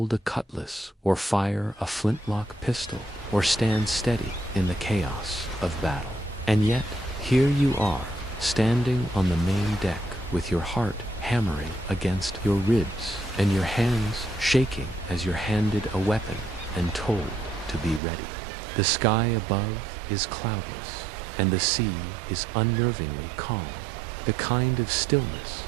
a cutlass or fire a flintlock pistol or stand steady in the chaos of battle. And yet, here you are, standing on the main deck with your heart hammering against your ribs and your hands shaking as you're handed a weapon and told to be ready. The sky above is cloudless, and the sea is unnervingly calm, the kind of stillness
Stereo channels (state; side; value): drops out; left; at 18.0 s